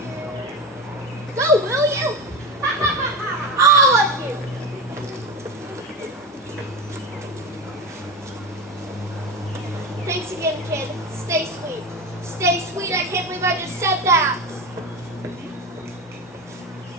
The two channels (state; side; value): normal; both; correlation 0.21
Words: Go, will you? All of you! Thanks again, kid. Stay sweet. Stay sweet. I can't believe I just said that.